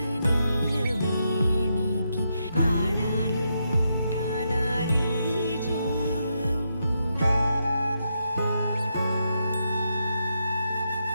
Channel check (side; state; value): both; inverted; correlation -0.82